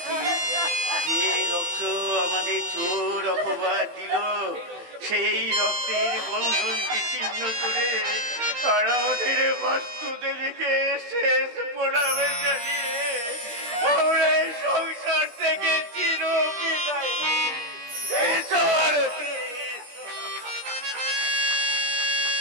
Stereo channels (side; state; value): left; late; 17 ms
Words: সেই রক্তের বন্ধনকে ছিন্ন করে আর আমাদের বাস্তু দেবীকে শেষ প্রণামে জানিয়ে আমরা এই সংসার থেকে চির বিদায় এসো আরতি।